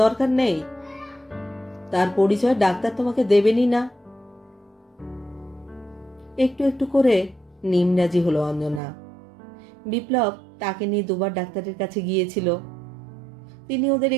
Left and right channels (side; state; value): left; drops out; at 8.8 s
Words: দরকার নেই, তার পরিচয় ডাক্তার তোমাকে দেবেনই না। একটু একটু করে নিমরাজি হলো অঞ্জনা। বিপ্লব তাকে নিয়ে দুবার ডাক্তারের কাছে গিয়েছিল। তিনি ওদের